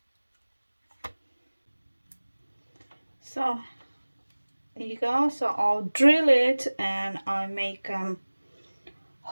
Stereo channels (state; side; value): inverted; both; correlation -1.00